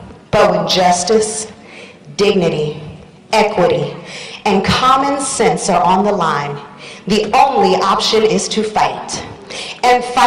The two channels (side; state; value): both; identical; correlation 1.00